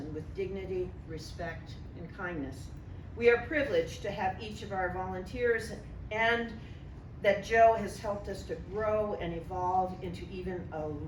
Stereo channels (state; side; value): identical; both; correlation 1.00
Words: with dignity, respect, and kindness. We are privileged to have each of our volunteers and that Joe has helped us to grow and evolve into even a